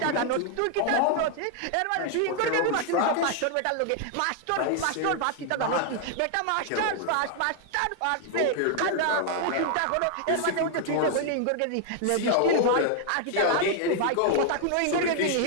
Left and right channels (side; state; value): both; different; correlation 0.00